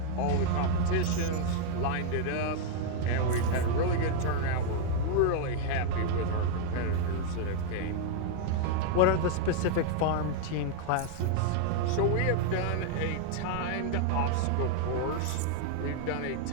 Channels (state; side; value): different; both; correlation 0.00